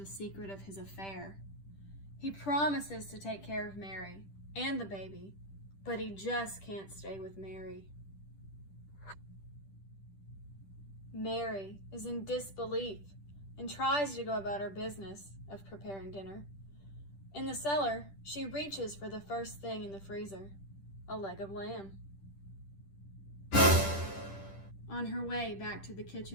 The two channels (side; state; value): right; late; 10 ms